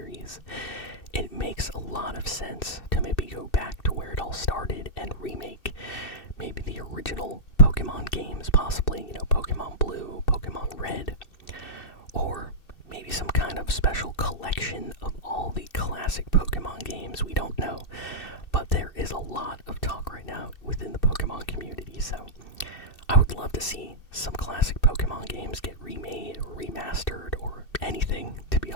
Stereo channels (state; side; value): late; right; 2.6 ms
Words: It makes a lot of sense to maybe go back to where it all started and remake maybe the original Pokemon games, possibly, Pokemon Blue, Pokemon Red, or maybe some kind of special collection of all the classic Pokemon games. We don't know, but there is a lot of talk right now within the Pokemon community, so I would love to see some classic Pokemon games get remade or remastered or anything, to be